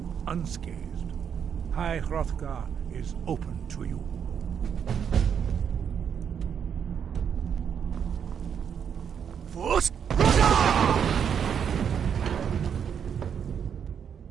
unscathed. High Hrothgar is open to you. Force!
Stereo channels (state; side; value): quieter; left; 7.8 dB